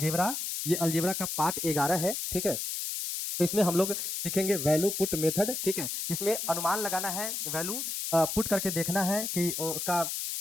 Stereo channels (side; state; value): left; noise; hiss, 3 dB below the sound